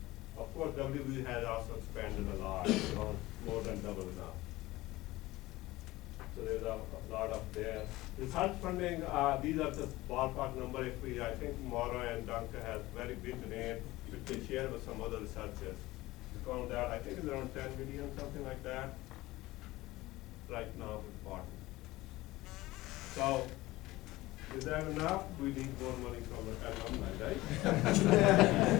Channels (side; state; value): right; quieter; 18.6 dB